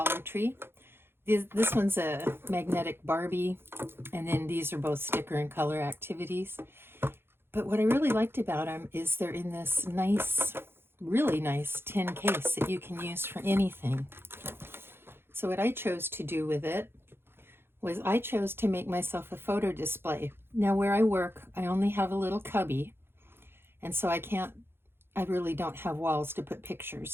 Tree. This one's a magnetic Barbie, and then these are both sticker and color activities. But what I really liked about them is they're in this nice, really nice tin case that you can use for anything. So what I chose to do with it was I chose to make myself a photo display. Now where I work, I only have a little cubby, and so I really don't have walls to put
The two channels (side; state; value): left; late; 0.11 ms